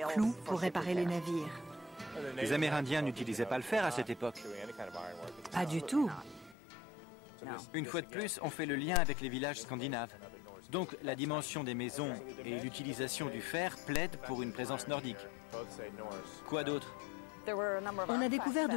clous pour réparer les navires. Les Amérindiens n'utilisaient pas le fer à cette époque? Pas du tout. Une fois de plus, on fait le lien avec les villages scandinaves. Donc la dimension des maisons et l'utilisation du fer plaident pour une présence nordique. Quoi d'autre? On a découvert de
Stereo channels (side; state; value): right; drops out; at 6.6 s